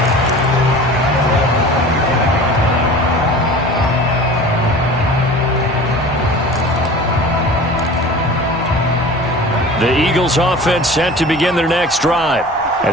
The Eagles offense set to begin their next drive.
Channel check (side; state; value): both; normal; correlation 0.40